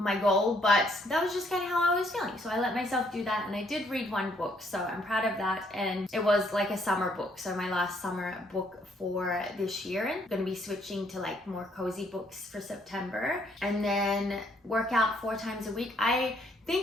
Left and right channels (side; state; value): both; normal; correlation 0.68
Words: goal, but that was just kind of how I was feeling. So I let myself do that, and I did read 1 book, so I'm proud of that. And it was a summer book, so my last summer book for this year. And I'm going to be switching to more cozy books for September. And then work out 4 times a week. I